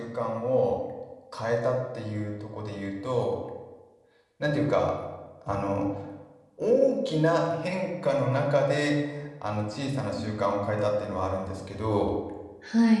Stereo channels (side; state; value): both; identical; correlation 1.00